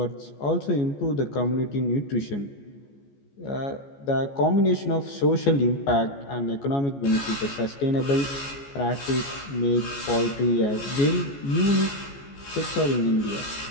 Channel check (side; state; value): right; late; 14 ms